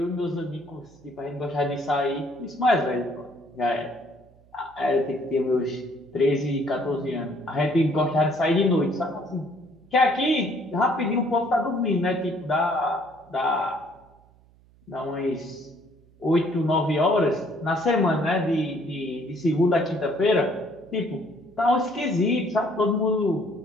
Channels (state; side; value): noise; right; hum, 29 dB below the sound